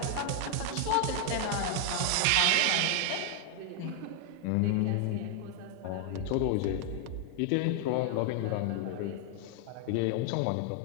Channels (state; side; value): different; both; correlation 0.00